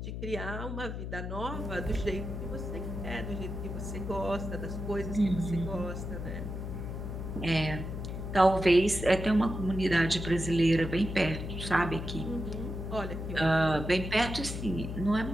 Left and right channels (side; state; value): left; noise; hum, 6 dB below the sound